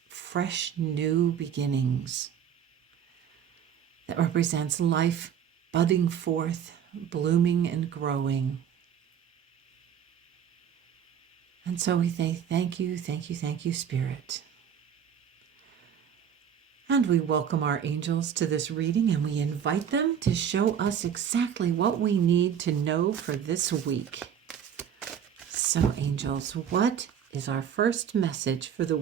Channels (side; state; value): left; quieter; 8.5 dB